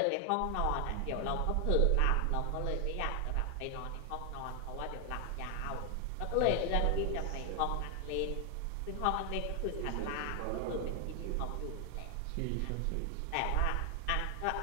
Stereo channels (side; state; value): both; different; correlation 0.00